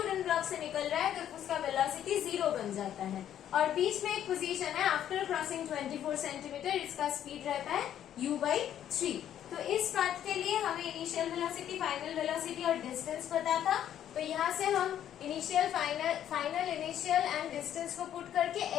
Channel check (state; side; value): quieter; right; 10.6 dB